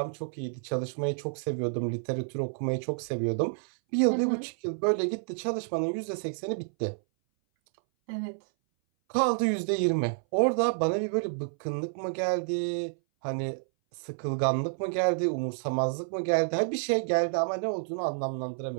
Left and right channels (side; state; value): left; silent; 58 dB below the other